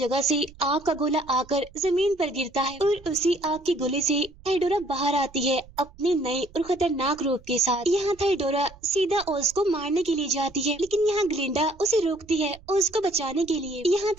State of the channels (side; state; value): right; noise; rumble, 23 dB below the sound